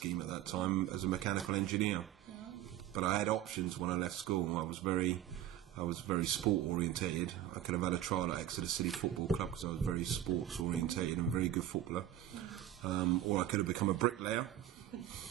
at that time as a mechanical engineer. But I had options when I left school. I was very sport orientated. I could have had a trial at Exeter City Football Club because I was very sports orientated and very good footballer. Or I could have become a bricklayer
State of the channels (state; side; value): quieter; left; 12.2 dB